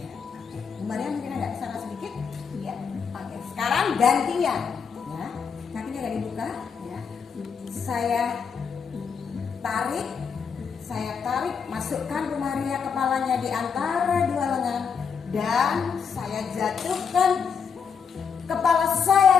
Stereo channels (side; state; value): right; quieter; 6.4 dB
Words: Maria mungkin agak kesana sedikit. Iya. Oke. Sekarang gantian. Ya. Kakinya nggak dibuka. Ya. Saya tarik, masukkan Bu Maria kepalanya di antara 2 lengan, dan saya jatuhkan kepala